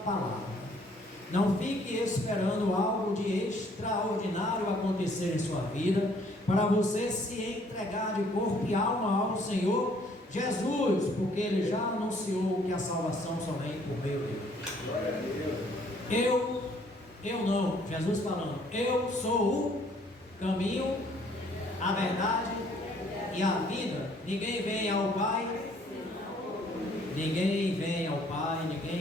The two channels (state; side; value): normal; both; correlation 0.62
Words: palavra. Não fique esperando algo de extraordinário acontecer em sua vida para você se entregar de corpo e alma ao Senhor Jesus, porque Ele já anunciou que a salvação somente por meio dele. Eu não, Jesus falando, eu sou o caminho, a verdade e a vida. Ninguém vem ao Pai, ninguém